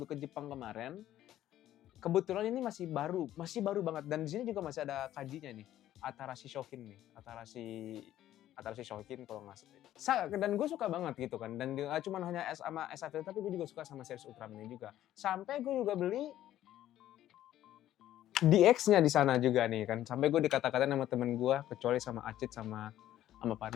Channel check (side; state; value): right; quieter; 12.8 dB